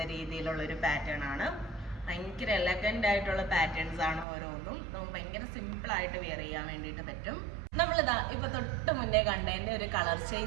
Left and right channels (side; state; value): left; drops out; at 4.2 s